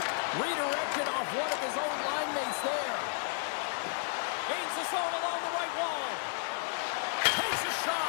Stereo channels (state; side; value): silent; right; 56 dB below the other